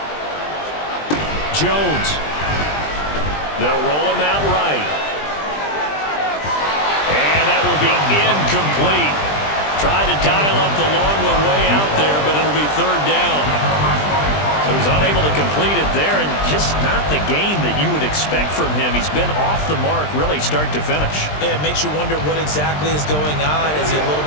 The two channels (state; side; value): late; right; 20 ms